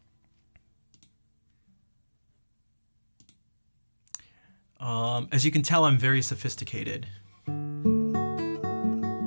As you can tell, I'm very sophisticated.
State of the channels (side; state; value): both; inverted; correlation -1.00